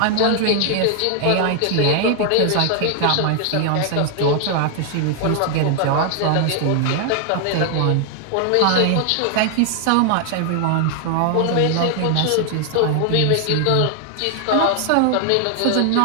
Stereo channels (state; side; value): different; both; correlation 0.00